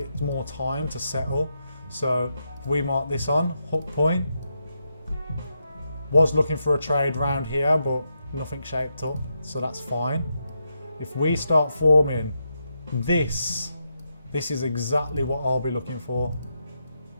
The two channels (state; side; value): inverted; both; correlation -0.84